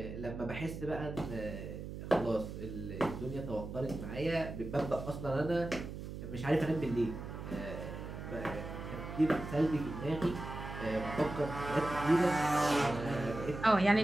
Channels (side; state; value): right; noise; hum, 8 dB below the sound